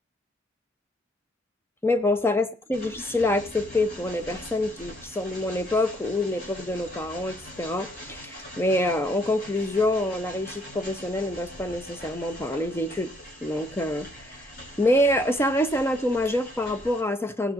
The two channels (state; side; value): normal; both; correlation 0.67